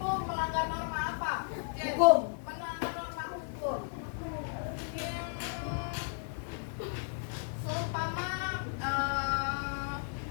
melanggar norma apa? Jen? Hukum. Melanggar norma hukum. Seumpama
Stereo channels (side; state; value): right; silent; digital silence